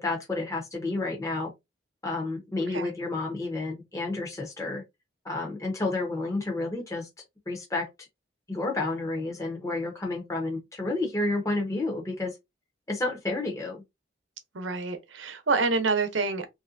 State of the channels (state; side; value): normal; both; correlation 0.40